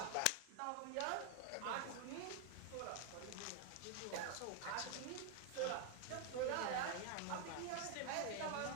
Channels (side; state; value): both; different; correlation 0.00